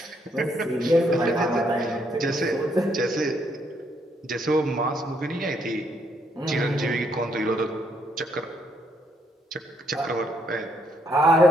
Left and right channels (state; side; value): normal; both; correlation 0.73